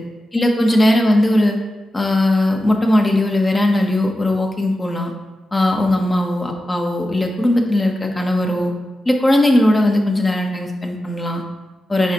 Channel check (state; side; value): normal; both; correlation 0.92